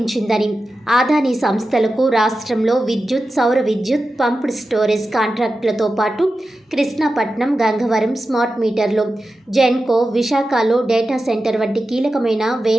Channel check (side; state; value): both; normal; correlation 0.92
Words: ఆదానీ సంస్థలకు రాష్ట్రంలో విద్యుత్, సౌర విద్యుత్, పంప్డ్ స్టోరేజ్ కాంట్రాక్టులతో పాటు కృష్ణాపట్నం, గంగవరం స్మార్ట్ మీటర్లు, జెన్కో, విశాఖలో డేటా సెంటర్ వంటి కీలకమైన